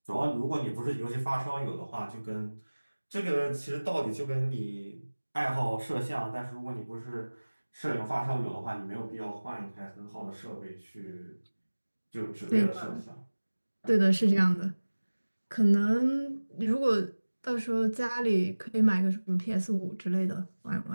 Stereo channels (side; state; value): both; inverted; correlation -1.00